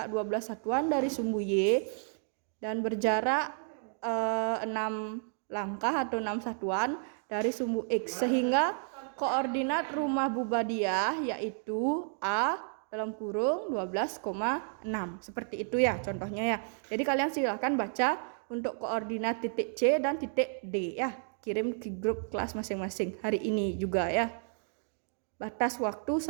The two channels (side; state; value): left; silent; 57 dB below the other